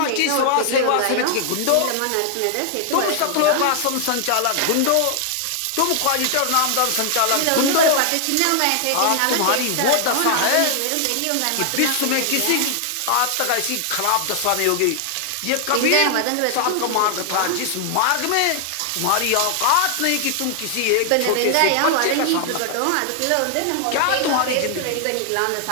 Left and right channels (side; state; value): both; different; correlation 0.00